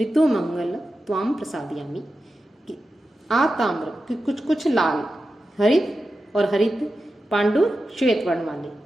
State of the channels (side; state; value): both; normal; correlation 0.91